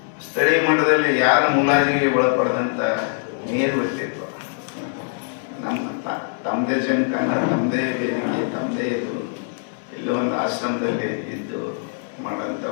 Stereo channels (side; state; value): right; silent; digital silence